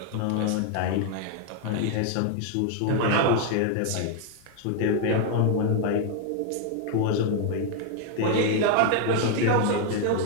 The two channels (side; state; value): both; different; correlation 0.00